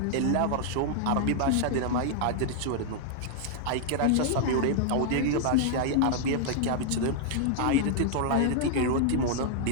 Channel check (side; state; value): both; different; correlation -0.01